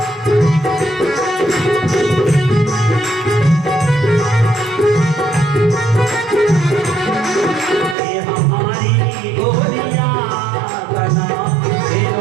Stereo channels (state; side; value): drops out; left; at 8.0 s